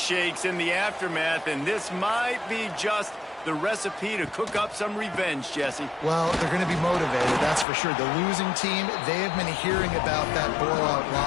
in the aftermath, and this might be just the recipe to cook up some revenge, Jesse. Well, they're going to be motivated, that's for sure. The losing team, they have been hearing about that blowout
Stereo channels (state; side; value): drops out; right; at 7.7 s